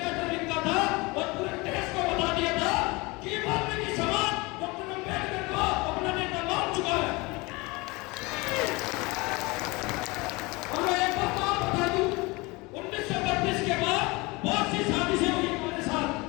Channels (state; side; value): quieter; right; 24.6 dB